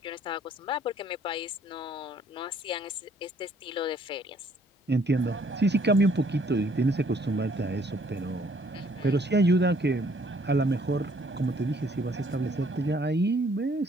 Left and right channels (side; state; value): both; normal; correlation 0.63